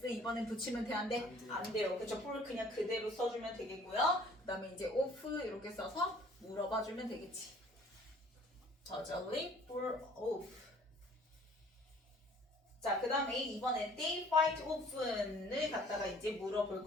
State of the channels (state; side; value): normal; both; correlation 0.54